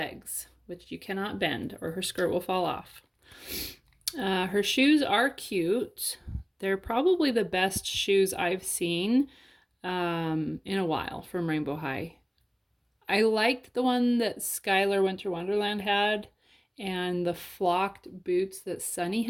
which you cannot bend or her skirt will fall off. Her shoes are cute. They're probably the best shoes I've seen in a while from Rainbow High. I liked the one that Skylar Winter Wonderland had, and the flocked boots that Sunny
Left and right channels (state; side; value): identical; both; correlation 1.00